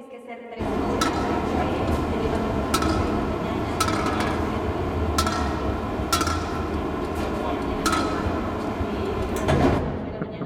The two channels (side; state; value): both; identical; correlation 1.00